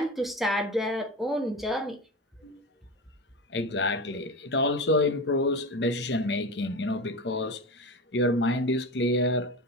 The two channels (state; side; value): normal; both; correlation 0.25